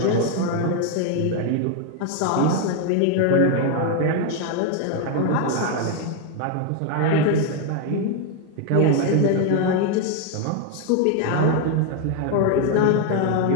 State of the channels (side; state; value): both; different; correlation 0.01